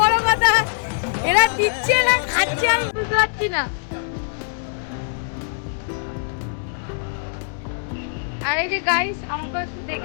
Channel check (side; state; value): right; silent; 64 dB below the other